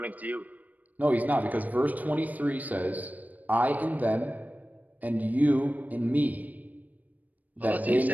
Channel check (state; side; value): late; left; 0.078 ms